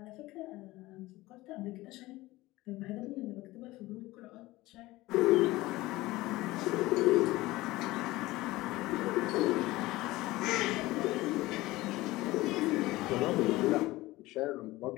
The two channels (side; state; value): right; quieter; 18.9 dB